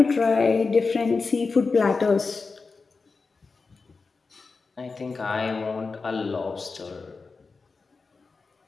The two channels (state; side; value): quieter; right; 4.4 dB